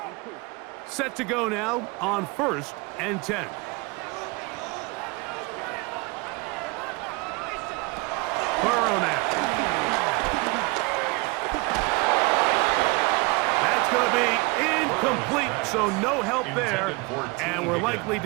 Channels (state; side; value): quieter; left; 26.6 dB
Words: Set to go now on 1st and 10. Burrow now. That's going to be incomplete, so no help there. And we're likely